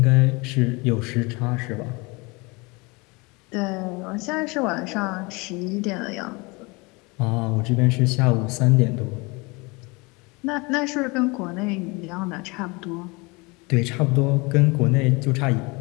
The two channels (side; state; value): right; quieter; 26.8 dB